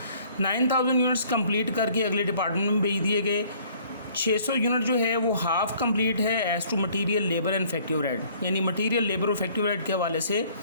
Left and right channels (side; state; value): both; inverted; correlation -0.58